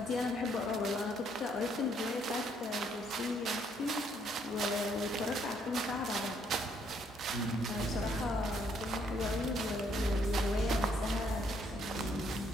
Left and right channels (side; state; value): both; normal; correlation 0.69